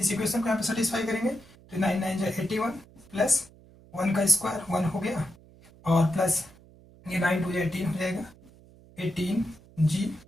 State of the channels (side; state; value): right; noise; hum, 24 dB below the sound